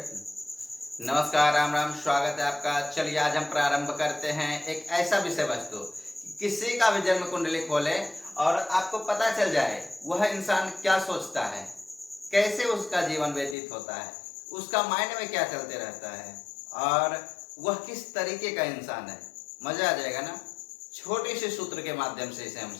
राम राम, स्वागत है आपका। चलिए आज हम प्रारंभ करते हैं एक ऐसा विषय वस्तु, किसी का भी जन्म कुंडली खोले और आपको पता चल जाए वह इंसान क्या सोचता है, कैसे उसका जीवन व्यतीत होता है, उसका माइंड में क्या चलते रहता है और वह किस तरीके का इंसान है। मजा आ जाएगा ना। छोटे से सूत्र के माध्यम से इसे हम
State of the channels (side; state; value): right; drops out; at 13.6 s